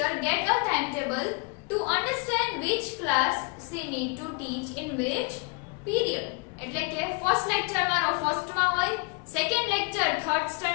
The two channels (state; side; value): quieter; right; 31.4 dB